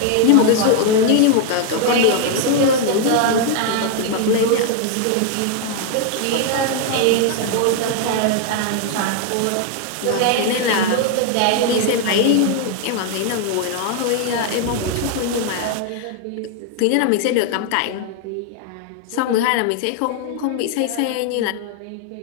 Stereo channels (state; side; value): different; both; correlation 0.00